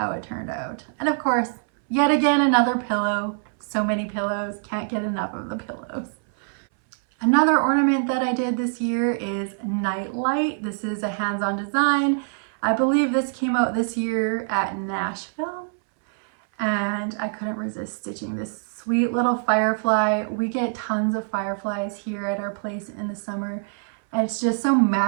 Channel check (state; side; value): silent; left; 61 dB below the other